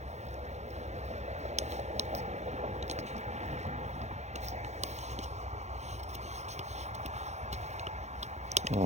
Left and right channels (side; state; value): left; late; 0.33 ms